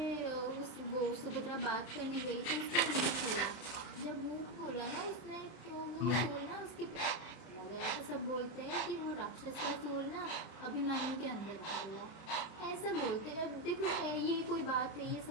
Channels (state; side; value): late; right; 32 ms